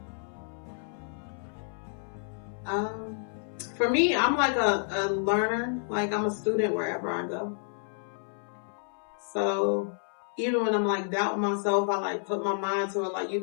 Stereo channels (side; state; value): right; silent; 58 dB below the other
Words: For me, I'm like a learner. Like I'm a student wherever I go. So even when I'm like doubting myself, I like put my mind to it. Like you